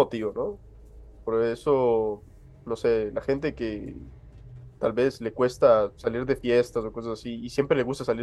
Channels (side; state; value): both; identical; correlation 1.00